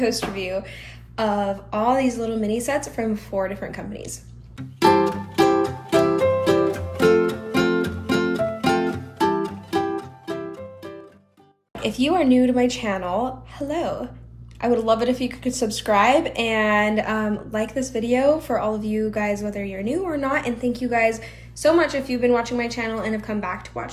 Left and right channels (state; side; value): identical; both; correlation 1.00